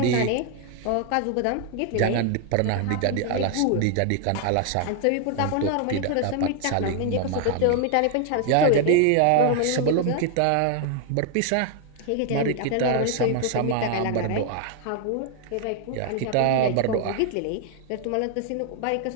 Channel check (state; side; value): different; both; correlation 0.00